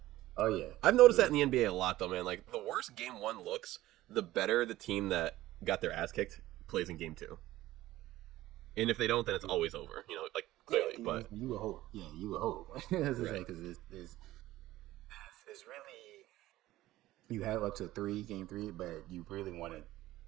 Oh yeah. I've noticed that in the NBA a lot though, man. Like, the worse game one looks, the better the team that got their ass kicked plays in game two. And if they don't, then it's always over. Clearly. Yeah, but you would hope. Yeah, you would hope. That's Right. because it's really, you have up to game three, but you really want to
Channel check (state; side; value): quieter; left; 15.9 dB